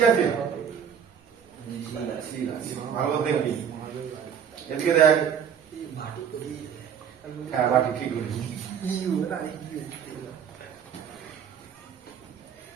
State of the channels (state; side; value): quieter; left; 8.1 dB